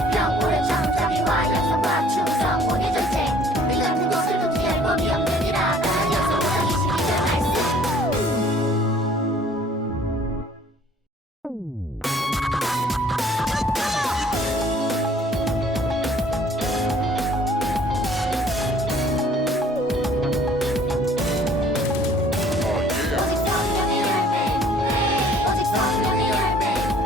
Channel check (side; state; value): both; normal; correlation 0.56